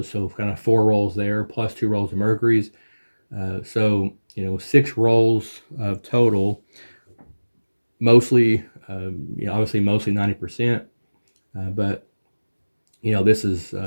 So kind of 4 rolls there, plus 2 rolls of Mercury's. So 6 rolls of total. Mostly, obviously, mostly 90%. But this is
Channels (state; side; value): inverted; both; correlation -1.00